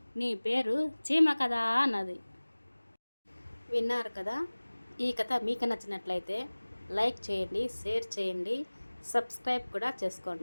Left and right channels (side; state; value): both; inverted; correlation -1.00